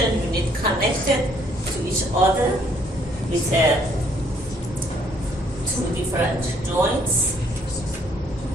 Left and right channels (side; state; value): both; normal; correlation 0.65